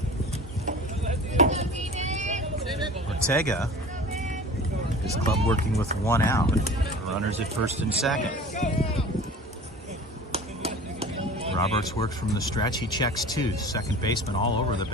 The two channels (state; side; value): normal; both; correlation 0.40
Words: Ortega, his club working with 1 out. Runners at first and second. Roberts works from the stretch. He checks 2. Second baseman all over the